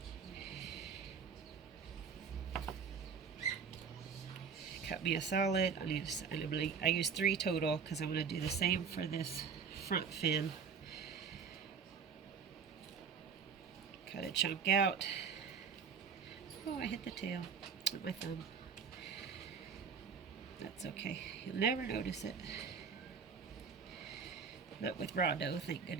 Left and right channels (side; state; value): left; quieter; 6.2 dB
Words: Cut me a solid. I use 3 total because I'm going to do the same for this front fin. Cut a chunk out. Oh, I hit the tail with my thumb. That's okay. You'll never notice it. Not with raw dough, thank